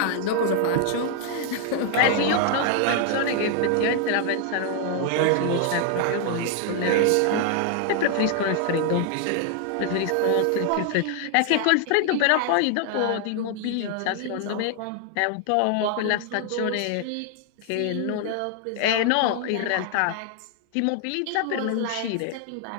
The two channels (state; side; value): different; both; correlation 0.00